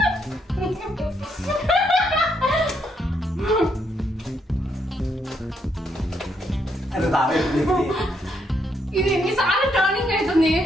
ఇది ఎన్నిసార్లు టర్నింగ్ అవుతుంది?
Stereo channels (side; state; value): both; normal; correlation 0.75